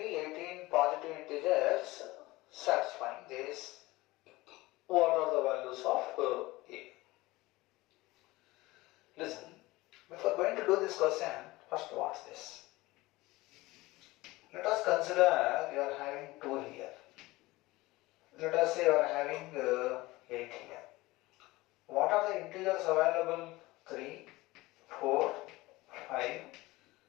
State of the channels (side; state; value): right; quieter; 20.1 dB